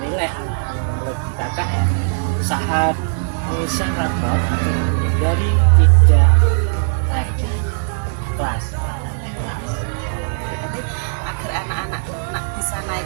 menurut kakak saat pengisian rapor atau menghindari tidak ada kelas. Agar anak-anak bisa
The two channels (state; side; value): silent; left; digital silence